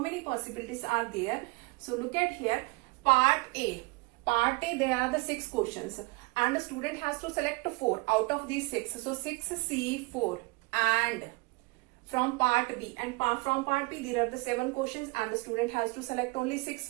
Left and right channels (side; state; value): left; quieter; 26.3 dB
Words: possibilities are there? So look at here, part A there are the 6 questions and the student has to select 4 out of these 6. So 6C4, and from part B, and from part B there are the 7 questions and the student has to select only 6